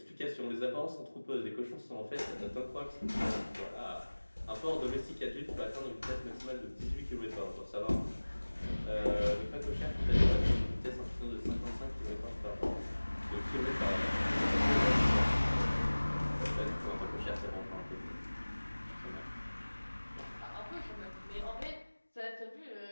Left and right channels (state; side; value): inverted; both; correlation -1.00